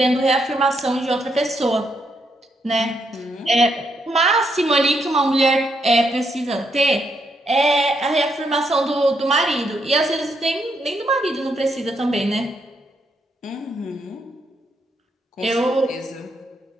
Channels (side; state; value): both; normal; correlation 0.78